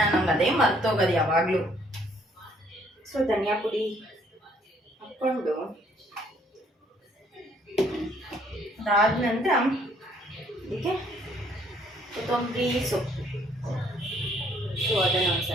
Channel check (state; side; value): normal; both; correlation 0.64